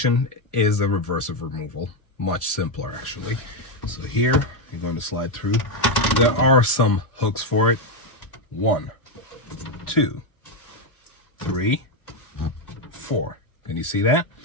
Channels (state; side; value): late; right; 1.1 ms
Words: is a reversive removal. Much simpler, actually. So here, you're going to slide through. There are some hooks for it. 1, 2, 3, 4. Can you see that?